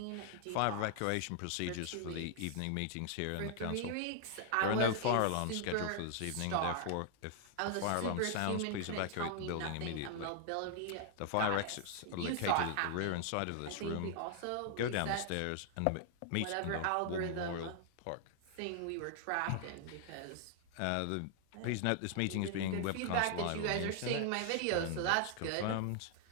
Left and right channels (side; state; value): both; different; correlation 0.00